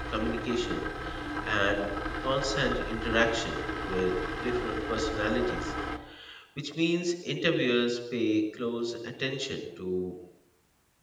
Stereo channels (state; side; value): identical; both; correlation 1.00